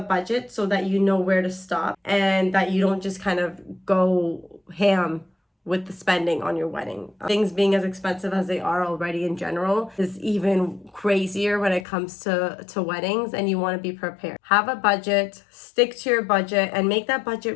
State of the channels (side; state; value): right; drops out; at 11.9 s